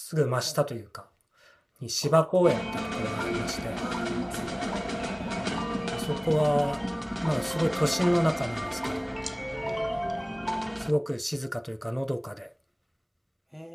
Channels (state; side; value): identical; both; correlation 1.00